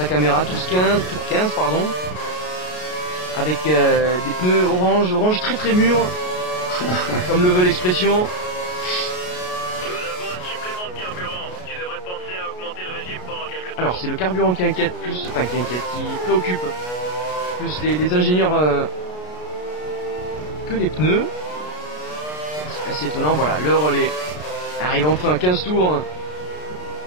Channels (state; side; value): late; right; 33 ms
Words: caméra tour 15 pardon. Avec des pneus orange très très mûrs. Comme le veut l'expression. Alors c'est le carburant qui inquiète plus, qui préoccupe plus les ingénieurs que les pneus. C'est assez étonnant, voilà, le relais arrive enfin 15 tours